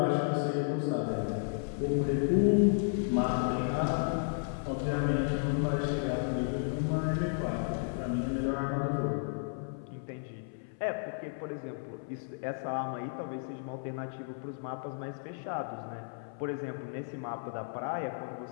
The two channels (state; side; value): silent; right; 56 dB below the other